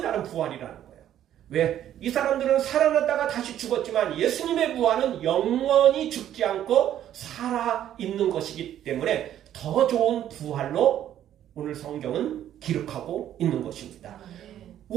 다른 부활이라는 거예요. 왜? 이 사람들은 살아났다가 다시 죽었지만 예수님의 부활은 영원히 죽지 않고 살아있는 것이기 때문에 더 좋은 부활로 오늘 성경은 기록하고 있는 것입니다.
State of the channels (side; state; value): left; quieter; 11.2 dB